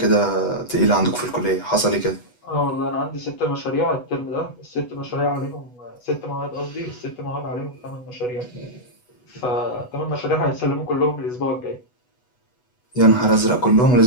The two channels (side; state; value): right; late; 8.1 ms